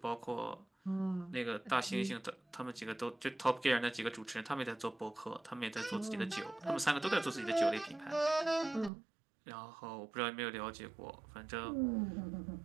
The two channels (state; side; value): drops out; left; at 8.9 s